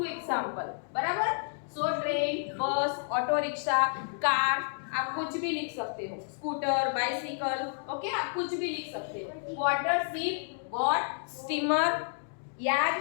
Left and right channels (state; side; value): silent; right; digital silence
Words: example, बराबर? So train, bus, auto rickshaw, car, आप कुछ भी लिख सकते हो, स्कूटर, बाइसिकल, ओके, आप कुछ भी लिख सकते हो. वाटर, शिप, बोट, स्टीमर,